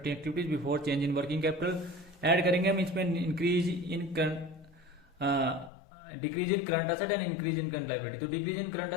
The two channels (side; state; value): right; drops out; at 5.7 s